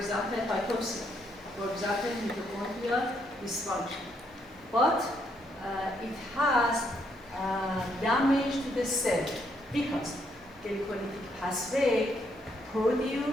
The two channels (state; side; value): normal; both; correlation 0.73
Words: hypoxia, for example, mitochondrial dysfunction. But it has damage to the cell because glycolytic pathway